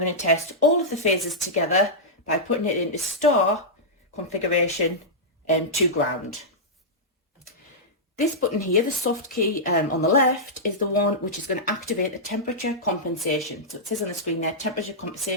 to test all of the phases together by putting it into star configuration to ground. This button here, the soft key on the left, is the one which is going to activate the temperature compensation. So it says on the screen there, temperature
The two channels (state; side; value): normal; both; correlation -0.11